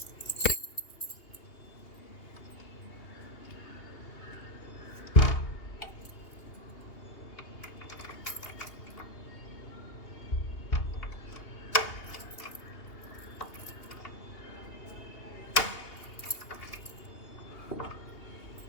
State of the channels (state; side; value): late; right; 2.8 ms